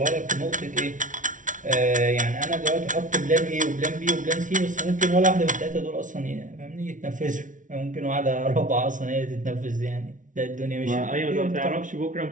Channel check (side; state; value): left; late; 0.37 ms